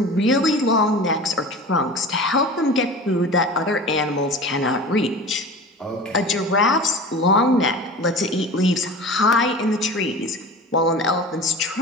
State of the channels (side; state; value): both; normal; correlation 0.36